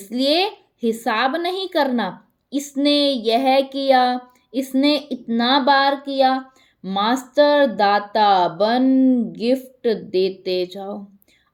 हिसाब नहीं करना, इसने यह किया, इसने इतना बार किया। मास्टर दाता बन गिफ्ट देते जाओ।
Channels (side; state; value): both; identical; correlation 1.00